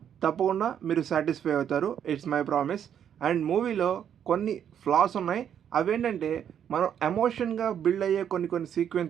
తప్పకుండా మీరు సాటిస్ఫై అవుతారు. It's my promise. అండ్ మూవీలో కొన్ని ఫ్లాస్ ఉన్నాయి. అవేంటంటే, మనం ఎమోషన్గా బిల్డ్ అయ్యే కొన్ని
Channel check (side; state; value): left; quieter; 9.0 dB